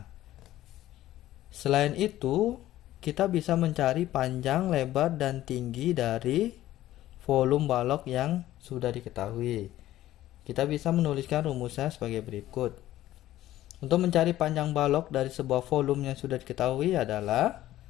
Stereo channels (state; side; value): quieter; right; 14.4 dB